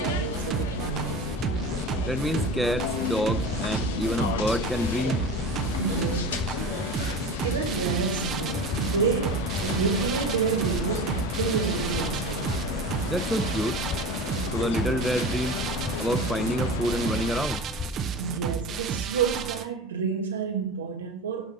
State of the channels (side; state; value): both; normal; correlation 0.30